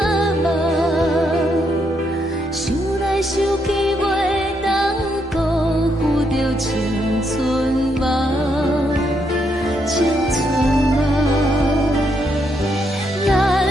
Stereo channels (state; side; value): normal; both; correlation 0.77